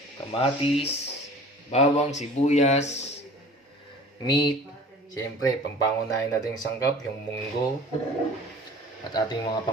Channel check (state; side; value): normal; both; correlation 0.45